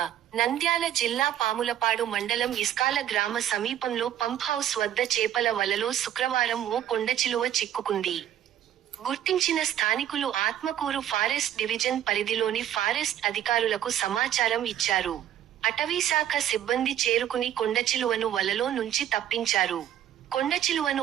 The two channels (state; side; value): quieter; left; 11.2 dB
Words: నంద్యాల జిల్లా పాములపాడు మండలం ఇస్కాల గ్రామ సమీపంలో పంప్ హౌస్ వద్ద చేపల వలలో శుక్రవారం ఓ కొండచిలువ చిక్కుకుంది. గుర్తించిన స్థానికులు ఆత్మకూరు ఫారెస్ట్ డివిజన్ పరిధిలోని ఫారెస్ట్ అధికారులకు సమాచారం ఇచ్చారు. అటవీశాఖ సిబ్బంది చేరుకుని కొండచిలువను వలలో నుంచి తప్పించారు. కొండచిలువను